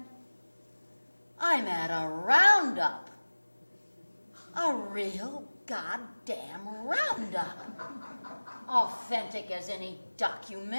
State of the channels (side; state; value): both; inverted; correlation -1.00